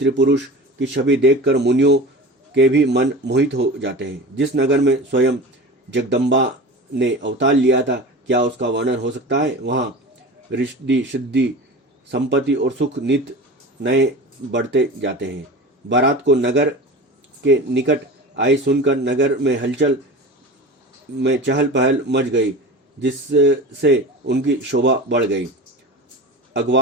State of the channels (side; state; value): both; normal; correlation 0.33